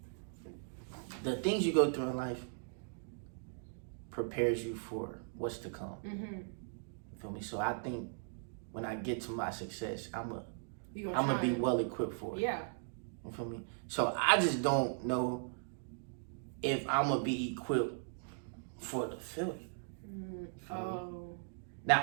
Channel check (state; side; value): silent; left; digital silence